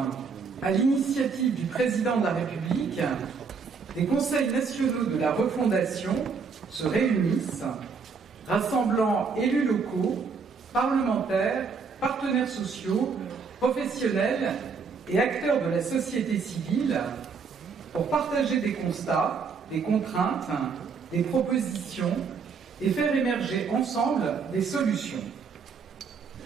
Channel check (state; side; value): quieter; left; 5.4 dB